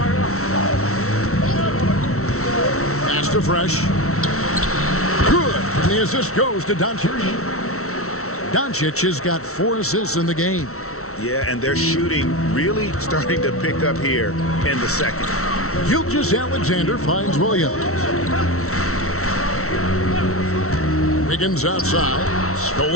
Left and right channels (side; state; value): right; late; 0.63 ms